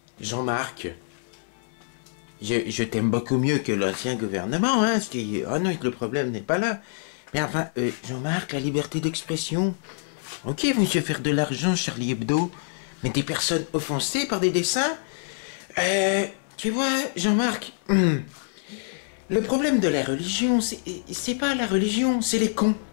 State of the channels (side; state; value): right; silent; 61 dB below the other